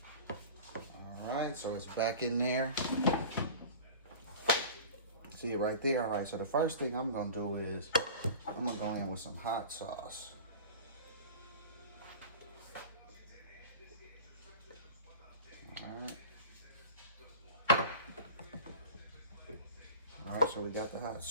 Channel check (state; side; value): inverted; both; correlation -0.37